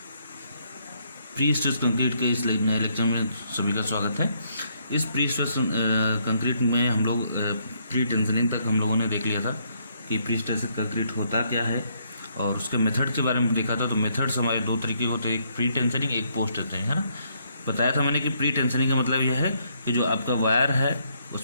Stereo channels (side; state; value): both; inverted; correlation -0.72